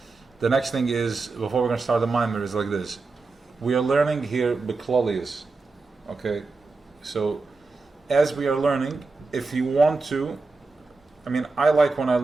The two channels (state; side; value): quieter; left; 3.8 dB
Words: The next thing is, before we're going to start the mimer, is like this. We are learning here Beklolius. Okay? So, as we are learning, if you want to, I like when I